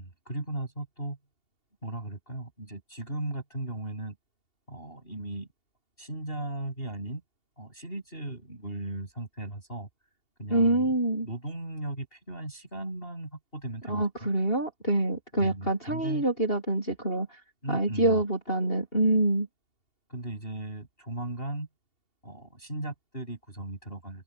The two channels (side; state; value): right; late; 2.8 ms